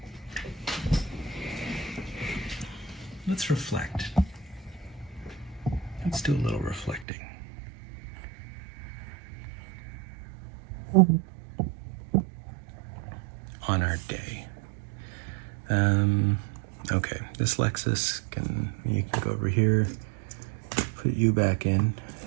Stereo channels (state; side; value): drops out; left; at 7.1 s